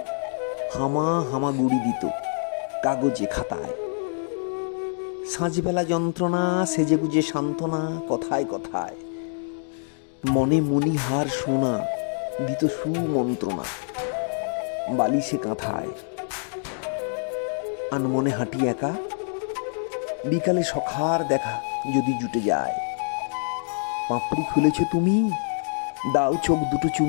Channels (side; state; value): right; silent; 61 dB below the other